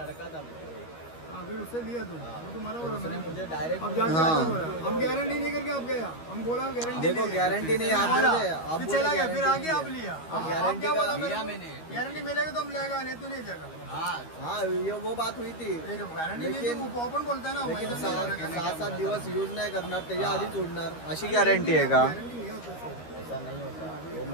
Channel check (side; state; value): right; late; 13 ms